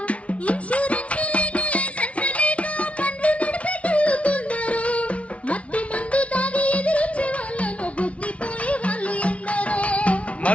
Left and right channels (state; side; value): late; right; 0.063 ms